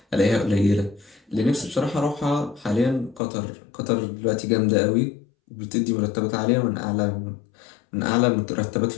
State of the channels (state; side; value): drops out; right; at 3.2 s